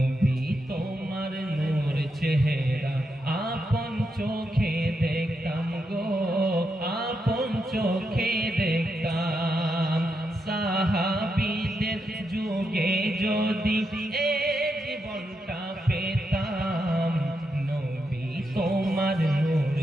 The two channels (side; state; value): both; normal; correlation 0.84